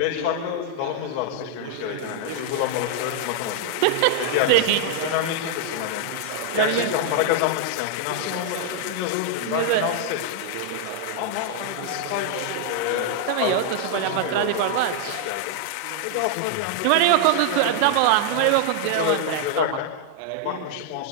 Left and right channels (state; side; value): different; both; correlation 0.00